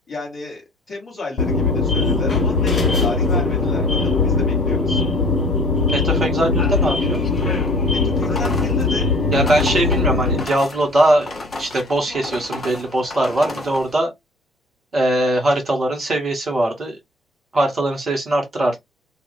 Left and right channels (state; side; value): normal; both; correlation 0.50